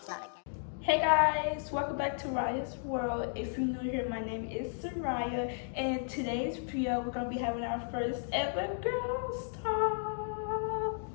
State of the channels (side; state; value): right; silent; digital silence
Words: Hey guys, welcome back to Ryah's World. If you're new here, my name is Ryah, and in today's video we're gonna be having our first ever girls talk.